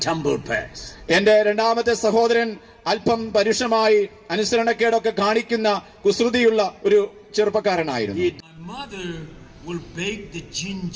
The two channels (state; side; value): identical; both; correlation 1.00